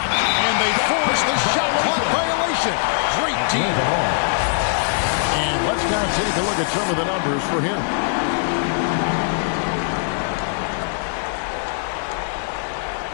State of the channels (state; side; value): silent; right; digital silence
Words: and they force the shot clock violation. Great team. And let's now take a look at some of the numbers for him.